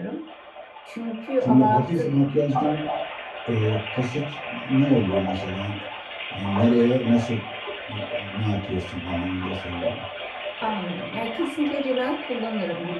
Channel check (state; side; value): identical; both; correlation 1.00